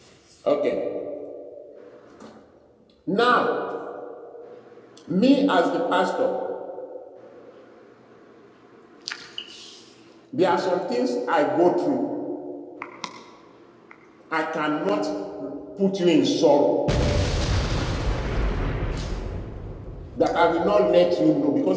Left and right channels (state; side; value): identical; both; correlation 1.00